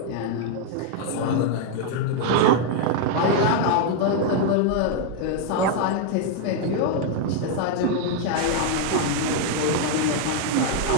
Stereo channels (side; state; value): both; different; correlation 0.00